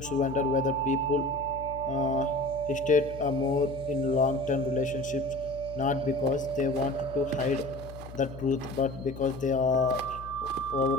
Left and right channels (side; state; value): left; noise; hum, 14 dB below the sound